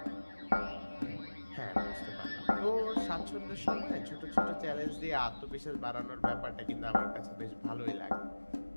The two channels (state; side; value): inverted; both; correlation -1.00